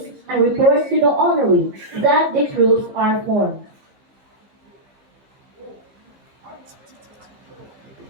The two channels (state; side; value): late; left; 15 ms